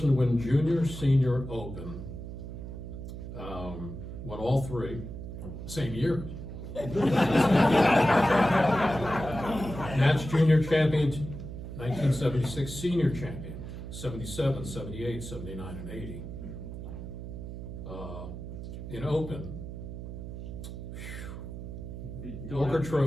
to win Junior, Senior, Open, won all 3, same year. Nats Junior Champion, 1976, Senior Champion, 77, 78, 79, and 80. In Open, Walker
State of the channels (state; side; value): noise; right; hum, 9 dB below the sound